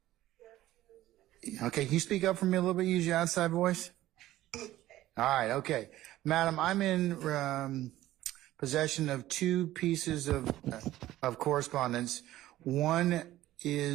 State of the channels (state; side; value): quieter; left; 15.0 dB